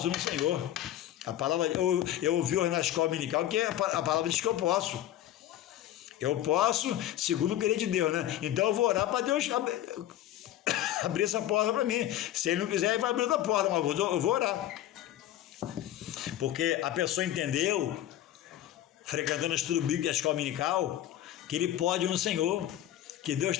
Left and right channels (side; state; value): right; quieter; 12.7 dB